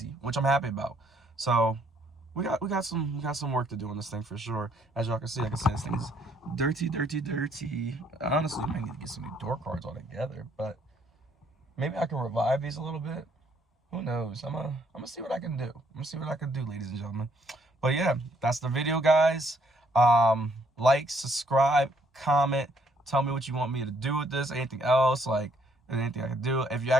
which I'm happy about. So we got some work to do on this thing for sure. As y'all can see, like I said, this thing is dirty. Honestly, I might need to get some new door cards altogether, but maybe I can revive these a little bit. Who knows? I'm gonna see what I can do. I'm gonna see what I can do, ladies and gentlemen. But yeah, that's the video, guys. Like, subscribe, comment, tell me what you want me to do with this, anything else, like anything I can do. If you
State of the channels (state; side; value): normal; both; correlation 0.67